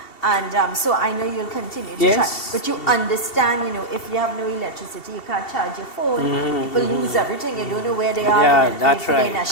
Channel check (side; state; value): right; late; 2.7 ms